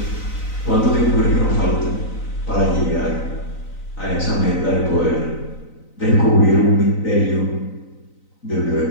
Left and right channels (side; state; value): right; late; 3.9 ms